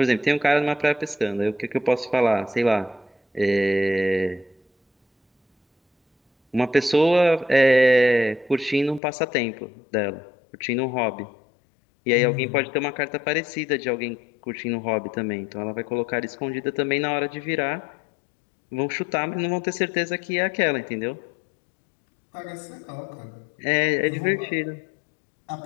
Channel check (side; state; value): right; drops out; at 9.0 s